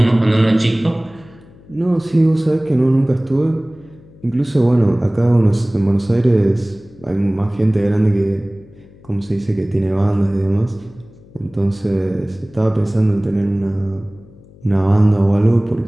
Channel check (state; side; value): noise; left; hum, 24 dB below the sound